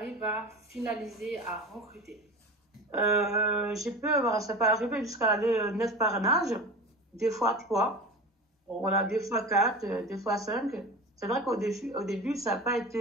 à finaliser, à recruter? Ça peut arriver jusqu'à 9 parrainages, des fois 3, voilà, des fois 4, des fois 5. C'est vrai qu'au début, ça n'a pas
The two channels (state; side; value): normal; both; correlation 0.31